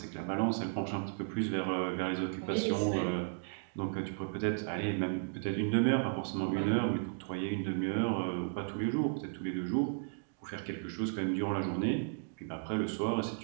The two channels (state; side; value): silent; left; digital silence